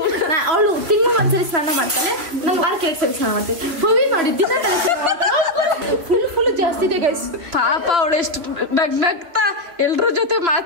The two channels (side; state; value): left; late; 2.7 ms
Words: ಅವಳು ತಿಂಗ್ಳಿಗೊಂದ್ಸರಿ ಸ್ನಾನ ಮಾಡ್ತಾಳೆ, ನಾನು ವಾರಕ್ಕೆ 2 ಸರಿ ಸ್ನಾನ ಮಾಡ್ತೀನಿ. ಹೋಗಿ ನೋಡಿ ದಿನ ತಲೆ ಫುಲ್ ಜಾಸ್ತಿ ಇದೆ ಗೈಸ್. ಪಾಪ ಅವಳು ಎಷ್ಟು ನಗ್ನಗ್ತಾ ಎಲ್ರ ಜೊತೆ